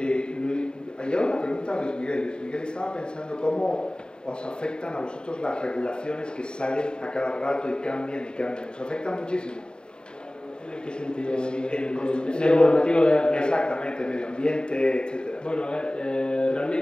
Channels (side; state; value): right; late; 0.049 ms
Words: Hay una pregunta a Luis Miguel. Luis Miguel estaba pensando cómo os afectan a vosotros las regulaciones que salen a cada rato y cambian y cambian. ¿Os afectan muchísimo? ¿En qué sentido? En el normativo de... Exactamente, medio ambiente, etc. Bueno, a ver,